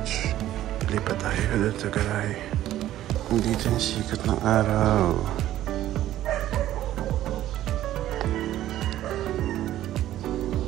Lipat tayo doon sa garage. Dito yung sikat ng araw.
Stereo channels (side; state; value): left; quieter; 13.3 dB